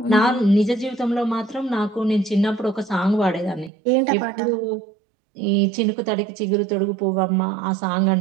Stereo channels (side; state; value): left; drops out; at 3.7 s